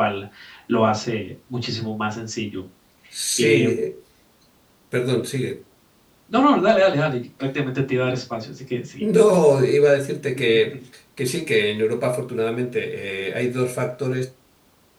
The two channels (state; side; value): identical; both; correlation 1.00